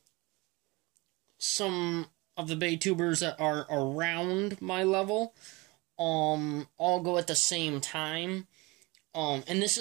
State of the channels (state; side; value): quieter; left; 24.3 dB